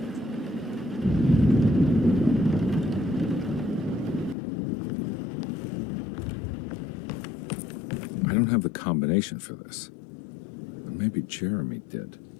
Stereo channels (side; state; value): right; drops out; at 4.4 s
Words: I don't have the combination for this. Or maybe Jeremy did.